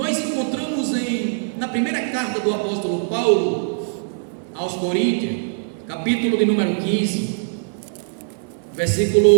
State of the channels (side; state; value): left; silent; digital silence